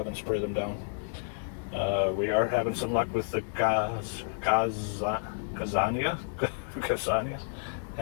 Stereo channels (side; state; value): right; silent; digital silence